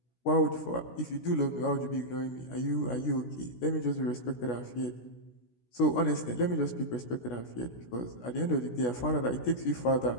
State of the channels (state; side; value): late; right; 16 ms